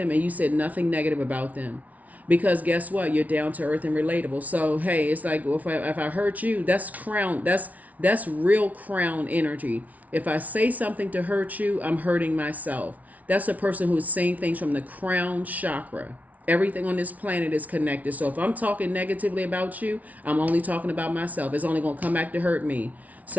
and you said nothing negative about them. Because guess what? You're down to earth and relatable. So, hey, it's like, well, if I hurt you, that's crown. That's real crown energy. If I say something to hurt you, I'm hurting myself. That's a person who's saying things from the crown chakra. Everything on this planet is connected. So if I'm talking negatively about you, I'm only talking about myself. It's only going to come back to hurt me.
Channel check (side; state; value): left; late; 0.072 ms